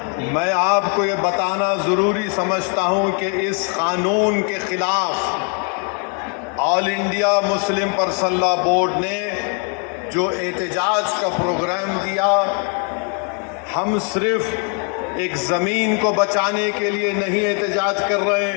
मैं आपको ये बताना ज़रूरी समझता हूँ कि इस कानून के ख़िलाफ़ all India Muslim personal law board ने जो एहतजाज का प्रोग्राम दिया, हम सिर्फ एक ज़मीन को बचाने के लिए नहीं एहतजाज कर रहे,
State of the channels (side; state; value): right; quieter; 38.3 dB